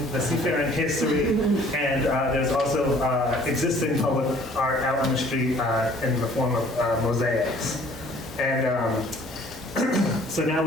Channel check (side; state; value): both; normal; correlation 0.55